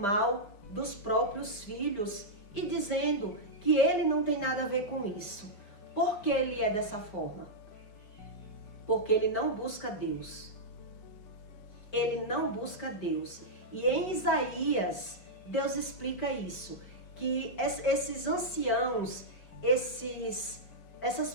dos próprios filhos e dizendo que ele não tem nada a ver com isso. Por que ele é dessa forma? Porque ele não busca Deus. Ele não busca Deus. E em Isaías, Deus explica isso, que esses anciãos, essas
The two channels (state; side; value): late; right; 4.9 ms